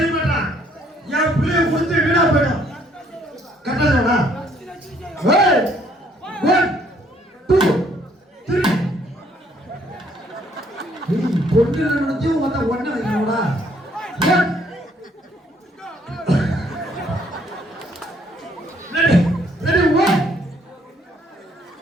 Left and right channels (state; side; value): normal; both; correlation 0.65